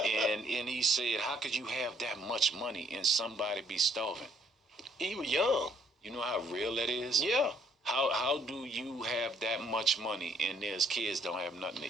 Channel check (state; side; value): normal; both; correlation 0.64